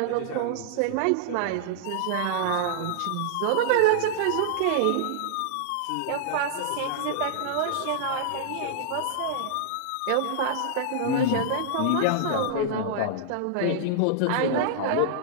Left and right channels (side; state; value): both; different; correlation -0.01